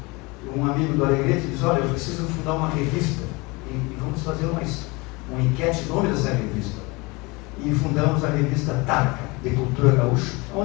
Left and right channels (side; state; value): right; quieter; 25.4 dB